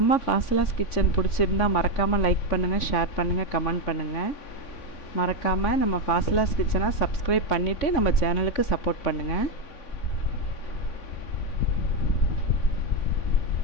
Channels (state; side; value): late; right; 3.5 ms